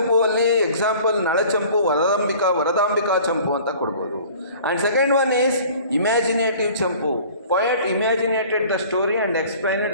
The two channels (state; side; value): inverted; both; correlation -0.48